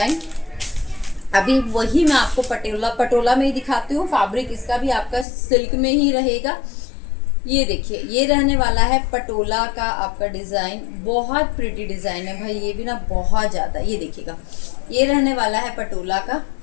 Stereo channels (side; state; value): right; drops out; at 5.2 s